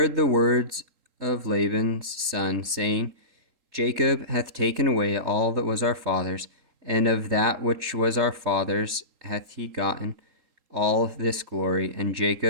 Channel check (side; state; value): left; late; 3.8 ms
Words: the words of Laban's son, saying, Jacob hath taken away all that was our father's, and of that which was our father's hath he gotten all this glory. And